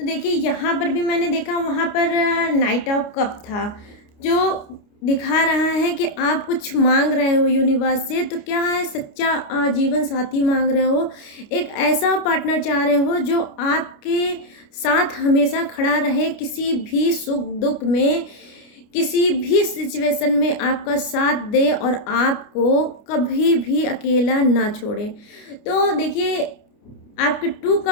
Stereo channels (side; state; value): right; late; 29 ms